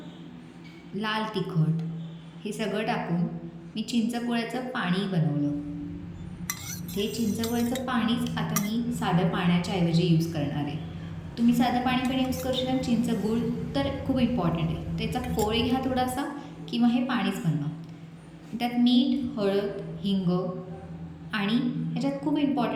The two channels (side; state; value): both; identical; correlation 1.00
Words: लाल तिखट हे सगळं टाकून मी चिंचगुळाचं पाणी बनवलं. ते चिंचगुळाचं पाणीच आता मी साधं पाण्याच्या ऐवजी यूज करणार आहे. तुम्ही साधं पाणी पण यूज करू शकता. चिंचगूळ तर खूप इम्पॉर्टंट आहे. त्याचा कोळ घ्या थोडासा किंवा हे पाणीच बनवा. त्यात मीठ, हळद, हिंग आणि ह्याच्यात खूप